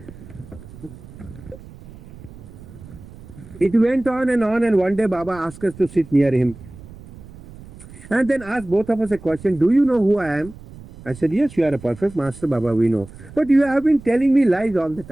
It went on, and one day Baba asked us to sit near him. And then asked both of us a question, do you know who I am? I said, yes, you are a perfect master, Baba, we know. But you have been telling me lies all the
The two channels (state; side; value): noise; right; rumble, 18 dB below the sound